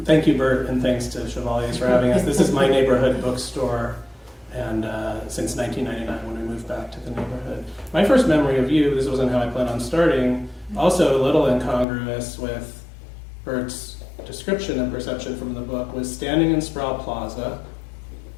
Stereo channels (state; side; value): drops out; right; at 11.9 s